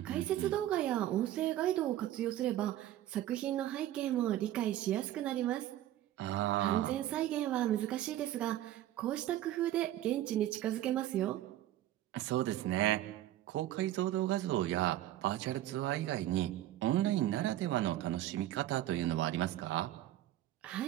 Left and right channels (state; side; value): quieter; left; 13.4 dB